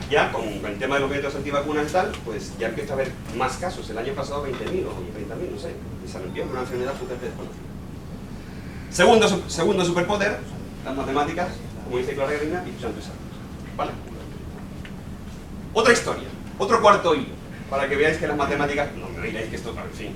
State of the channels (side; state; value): both; identical; correlation 1.00